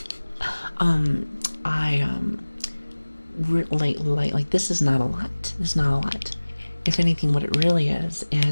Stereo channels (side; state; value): both; inverted; correlation -1.00